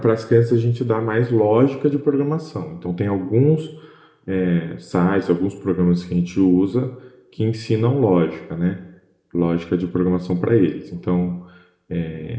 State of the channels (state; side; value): identical; both; correlation 1.00